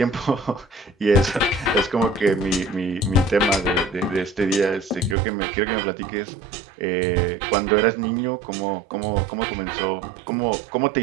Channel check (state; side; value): drops out; left; at 5.2 s